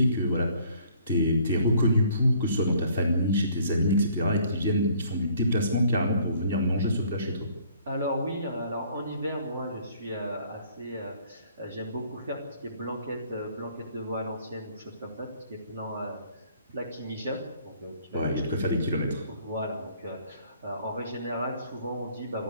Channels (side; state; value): both; inverted; correlation -0.59